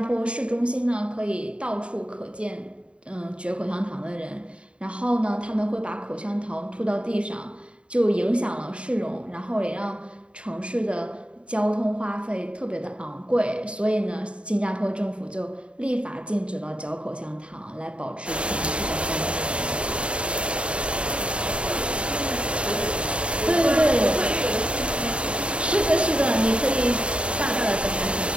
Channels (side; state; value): left; late; 0.057 ms